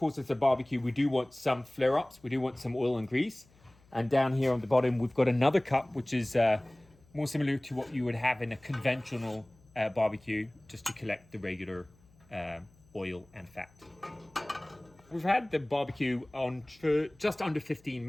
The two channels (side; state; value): left; noise; hum, 29 dB below the sound